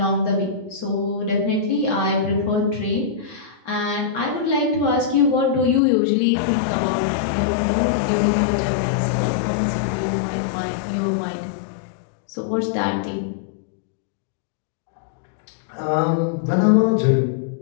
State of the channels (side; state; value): right; drops out; at 5.8 s